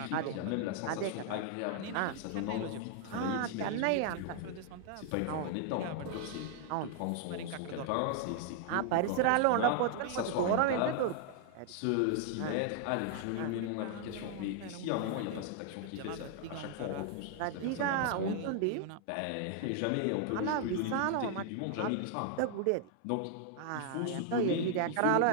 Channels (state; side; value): different; both; correlation 0.00